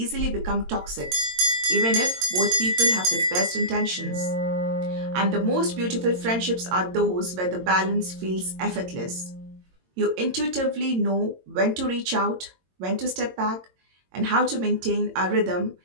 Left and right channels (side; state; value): left; late; 22 ms